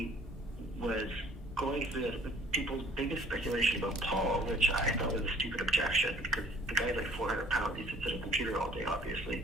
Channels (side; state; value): both; normal; correlation 0.55